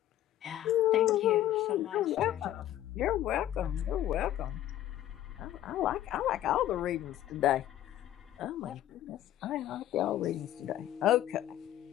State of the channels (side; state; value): right; quieter; 12.7 dB